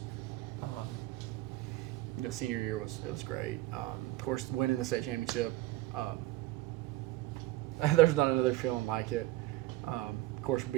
You know, senior year was great. Of course, winning the state championship. There's not another feeling like it. Of course,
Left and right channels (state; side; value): quieter; left; 16.9 dB